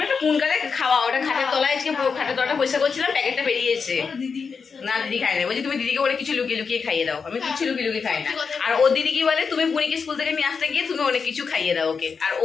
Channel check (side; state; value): right; quieter; 5.5 dB